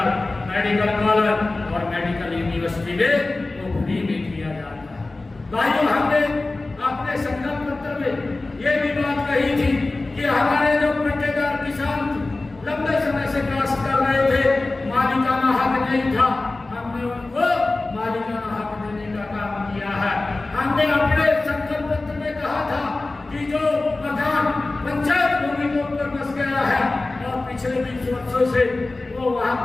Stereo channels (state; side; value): quieter; right; 3.2 dB